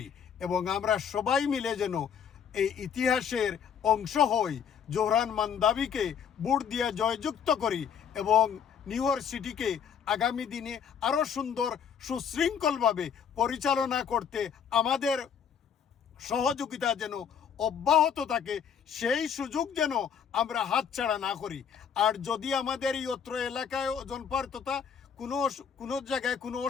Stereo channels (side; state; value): right; quieter; 7.6 dB